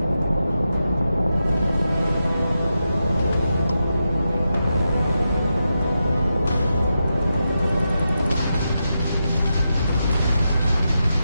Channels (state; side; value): inverted; both; correlation -0.88